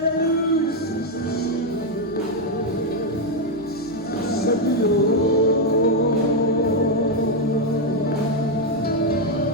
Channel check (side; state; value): both; normal; correlation 0.03